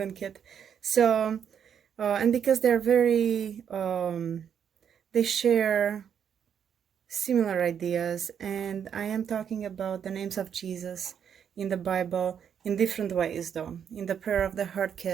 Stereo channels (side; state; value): left; quieter; 8.2 dB